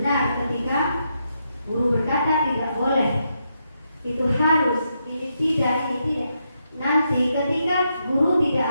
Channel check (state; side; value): inverted; both; correlation -0.81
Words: ketika guru berkata tidak boleh, itu harus, ini tidak. Nanti ketika guru tidak